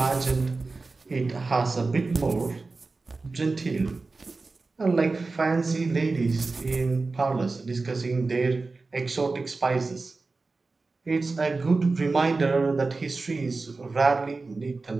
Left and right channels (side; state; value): left; quieter; 3.8 dB